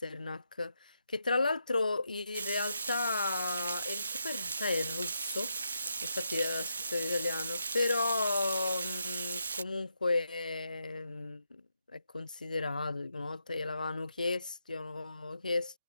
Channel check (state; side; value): inverted; both; correlation -0.82